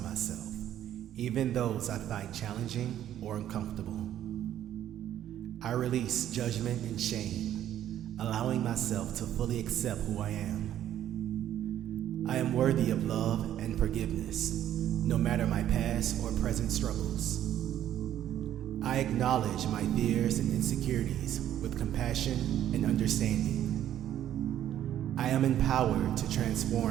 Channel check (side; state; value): left; quieter; 11.4 dB